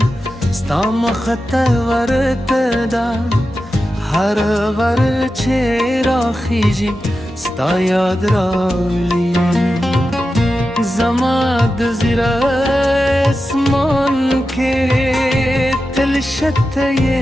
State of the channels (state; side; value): normal; both; correlation 0.91